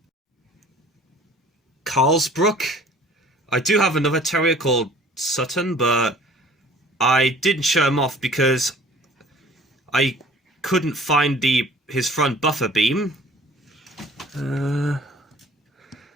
Carlsbrook. I do have another terrier called Sutton, but I didn't show him off because I couldn't find his front buffer beam.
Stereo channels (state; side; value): normal; both; correlation 0.51